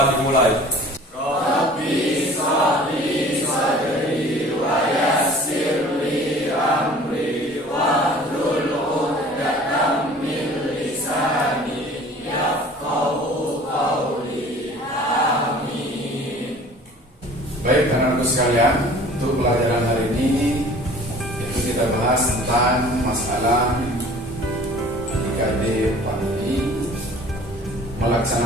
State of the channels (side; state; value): both; normal; correlation 0.47